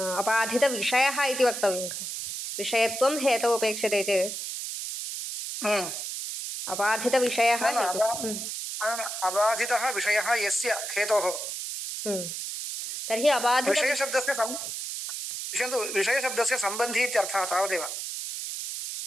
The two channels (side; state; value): right; noise; hiss, 5 dB below the sound